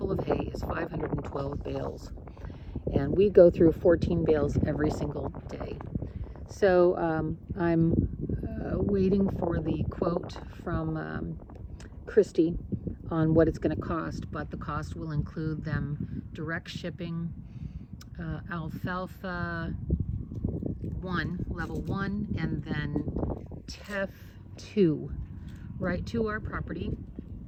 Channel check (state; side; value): identical; both; correlation 1.00